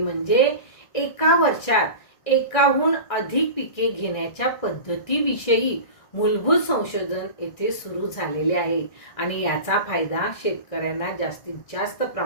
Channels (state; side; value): late; right; 1.7 ms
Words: एका वर्षात एकाहून अधिक पिके घेण्याच्या पद्धतीविषयी मूलभूत संशोधन येथे सुरू झालेले आहे आणि याचा फायदा शेतकऱ्यांना जास्तीत जास्त